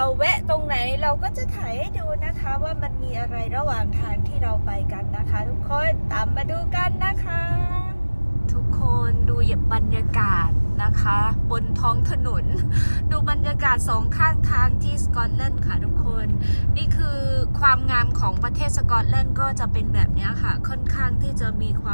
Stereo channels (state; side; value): inverted; both; correlation -1.00